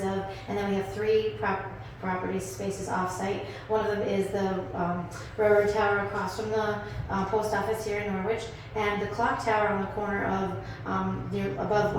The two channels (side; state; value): both; identical; correlation 1.00